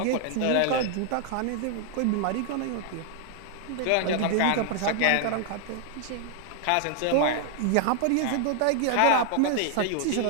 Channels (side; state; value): both; different; correlation 0.00